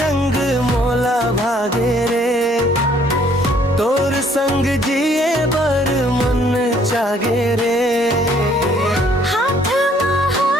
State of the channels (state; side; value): normal; both; correlation 0.63